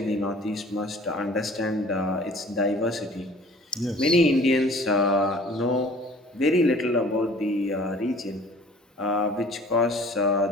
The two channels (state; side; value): normal; both; correlation 0.50